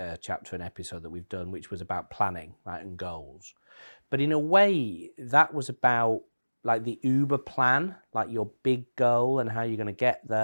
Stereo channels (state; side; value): inverted; both; correlation -1.00